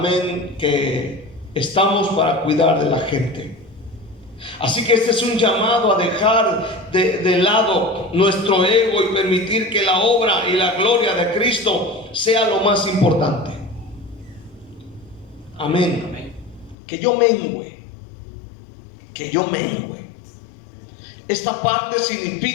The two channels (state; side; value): drops out; right; at 16.8 s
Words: que estamos para cuidar de la gente. Así que este es un llamado a dejar de lado nuestro ego y permitir que la obra y la gloria de Cristo sea lo más importante. Amén. Que yo mengüe. Esta parte